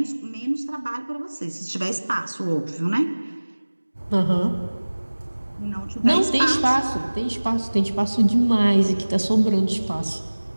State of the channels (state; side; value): inverted; both; correlation -1.00